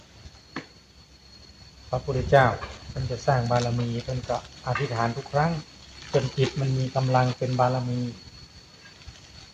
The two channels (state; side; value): identical; both; correlation 1.00